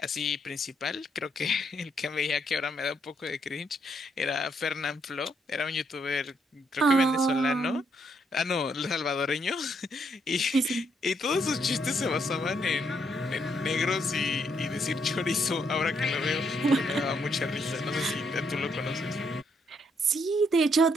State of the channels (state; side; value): normal; both; correlation 0.74